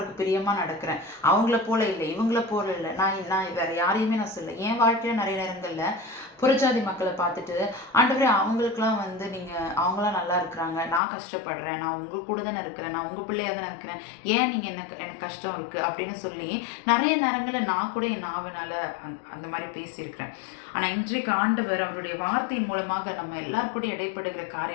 பிரியமாக நடக்கிறேன், அவங்கள போல இல்லை, இவங்கள போல இல்லை, நான் வேற யாரையுமே நான் சொல்ல. என் வாழ்க்கையில நிறைய நேரங்கள்ல புறஜாதி மக்களை பார்த்துட்டு ஆண்டவரே அவங்களுக்குலாம் நீங்கள் அவங்களாம் நல்லா இருக்கிறாங்க, நான் கஷ்டப்படுறேன், நான் உங்க கூட தானே இருக்கிறேன், நான் உங்கள் பிள்ளையாக தானே இருக்கிறேன், ஏன் நீங்கள் எனக்கு கஷ்டம் இருக்குது அப்படின்னு சொல்லி நிறைய நேரங்களில் நான் கூட என் நாவனால அந்த மாதிரி பேசியிருக்கிறேன். ஆனால் இன்றைக்கு ஆண்டவர் அவருடைய வார்த்தையின் மூலமாக நம்ம எல்லாருக்கூட இடைப்படுகிற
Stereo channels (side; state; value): right; drops out; at 11.0 s